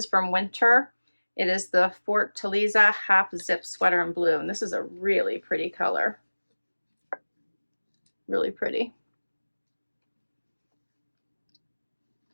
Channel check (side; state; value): both; inverted; correlation -1.00